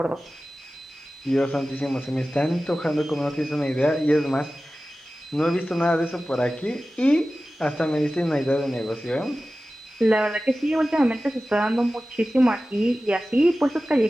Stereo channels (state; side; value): normal; both; correlation 0.95